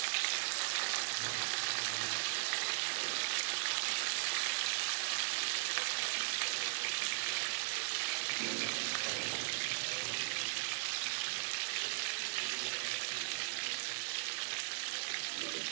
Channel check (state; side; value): silent; left; 52 dB below the other